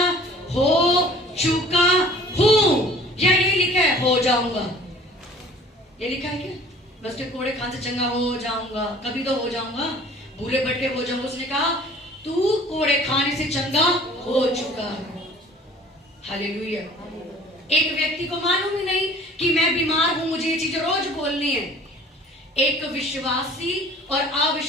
हो चुका हूं, या ये लिखा है हो जाऊंगा, ये लिखा है क्या, बस के कोड़े खाने से चंगा हो जाऊंगा, कभी तो हो जाऊंगा, भूले भटके हो जाऊंगा। उसने कहा तू कोड़े खाने से चंगा हो चुका है। हालेलुया। एक व्यक्ति को मालूम ही नहीं कि मैं बीमार हूं, मुझे ये चीजें रोज बोलनी है। एक विश्वासी और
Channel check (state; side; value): normal; both; correlation 0.48